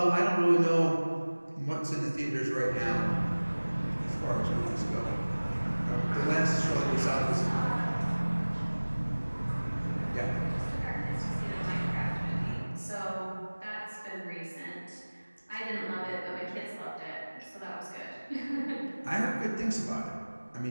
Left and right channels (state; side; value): inverted; both; correlation -1.00